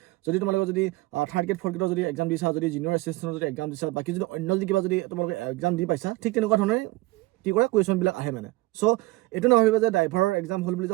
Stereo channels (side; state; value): left; quieter; 20.8 dB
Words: যদি তোমালোকে যদি 3rd গ্ৰেড 4th গ্ৰেডৰ যদি এক্সাম দিছা, যদি জুনিয়ৰ এছিষ্টেণ্টৰ যদি এক্সাম দিছা, বাকী যদি অন্য যদি কিবা যদি তোমালোকে এক্সাম দি পাইছা ঠিক তেনেকুৱা ধৰণে কি কৰে কুৱেশ্যনবিলাক আহে মানে। চ' এইটো নাভাবিব যে ড্ৰাইভাৰৰ এক্সাম হ'ল বুলি